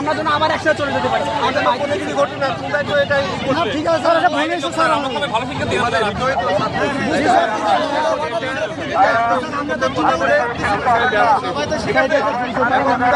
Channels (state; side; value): identical; both; correlation 1.00